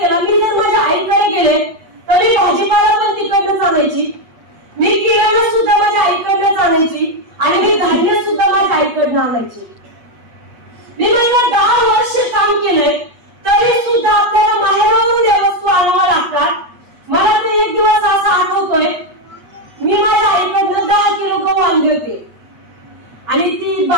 मी जर माझ्या आईकडे गेले तर मी भाजीपाला पण तिकडनं आणायची, मी किराणा सुद्धा माझ्या आईकडनं आणायची आणि मी धान्य सुद्धा माझ्या आईकडनं आणायची. मी माझ्या 10 वर्ष काम केलंय तरी सुद्धा आपल्याला माहेरावरून या वस्तू आणाव्या लागतात. मला तर एक दिवस असा आठवतोय, मी माझ्या आईकडनं 10 किलो गहू आणले होते आणि ती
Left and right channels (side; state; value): left; late; 8.3 ms